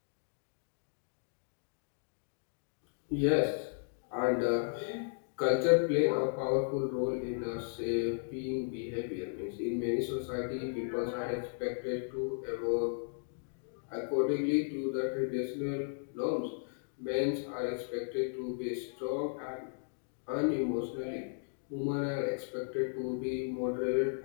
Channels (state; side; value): silent; right; digital silence